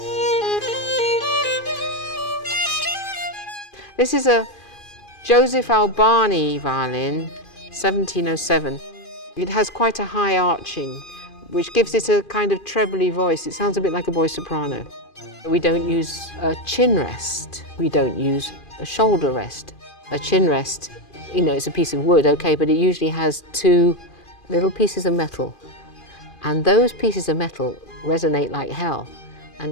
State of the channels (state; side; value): late; right; 2.4 ms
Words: This is a Joseph Albani violin, 1707. It has quite a high arching, which gives it a kind of trebly voice. It sounds a bit like a voice soprano. We don't use a chin rest. We don't use a shoulder rest. A chin rest, you know, it's a piece of wood, okay, but it usually has two little pieces of metal. And those pieces of metal resonate like hell